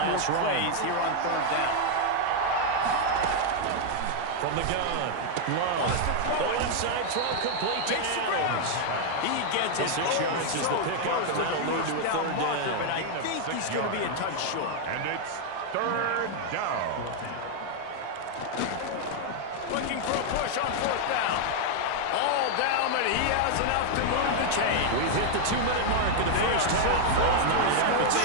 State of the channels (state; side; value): different; both; correlation 0.00